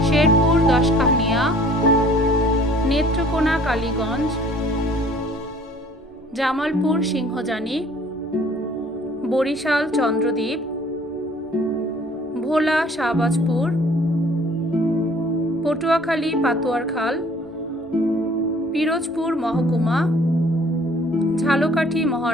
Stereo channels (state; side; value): normal; both; correlation 0.54